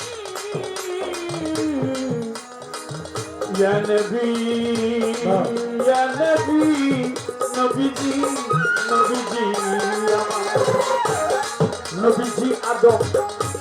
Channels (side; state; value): both; identical; correlation 1.00